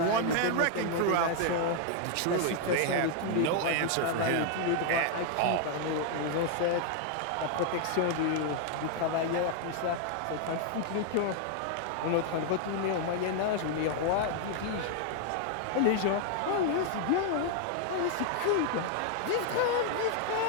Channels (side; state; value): both; different; correlation 0.00